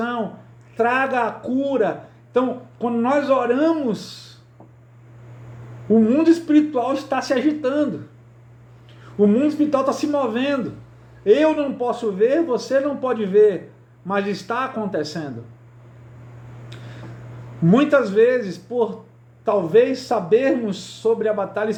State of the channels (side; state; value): both; identical; correlation 1.00